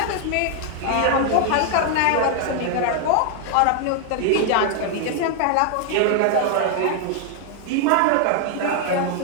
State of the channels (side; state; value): both; different; correlation 0.00